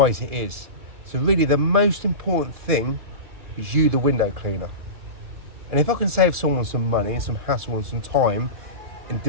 it is. So really the most important thing is you, the window cleaner. And if I can save someone some money and some hassle and some time and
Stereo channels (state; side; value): late; left; 2.4 ms